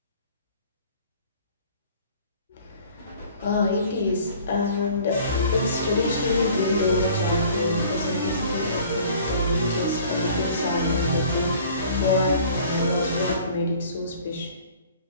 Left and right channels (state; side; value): inverted; both; correlation -0.50